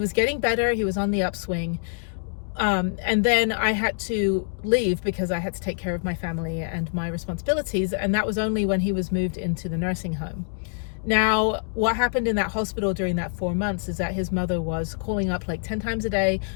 getting better. He was on the upswing. And then I had to leave because I had to take care of my family and my responsibilities. And that was only when he was moved into the nursing home. Now, what happened in that hospital during that 4 months is that his mother was calling up like 10 times a day,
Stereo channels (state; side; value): silent; right; digital silence